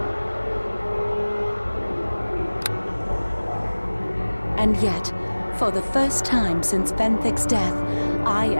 And yet, for the first time since Venthic's death, I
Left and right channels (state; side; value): inverted; both; correlation -1.00